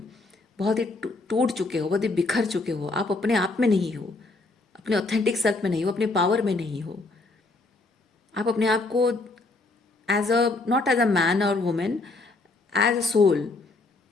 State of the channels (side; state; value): right; quieter; 3.4 dB